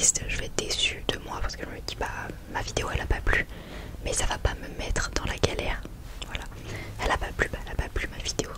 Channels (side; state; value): both; identical; correlation 1.00